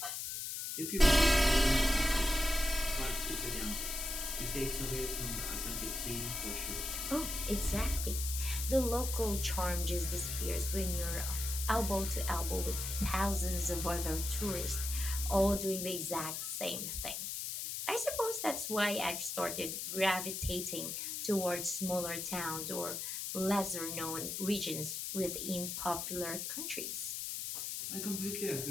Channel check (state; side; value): noise; left; hiss, 4 dB below the sound